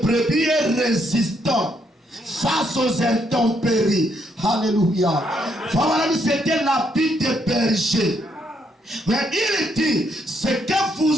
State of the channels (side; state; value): both; normal; correlation 0.74